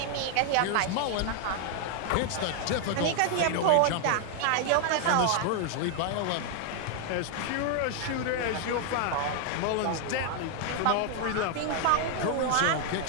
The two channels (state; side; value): different; both; correlation 0.00